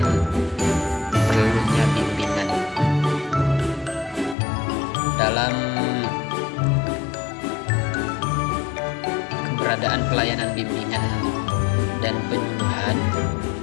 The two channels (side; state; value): right; drops out; at 4.4 s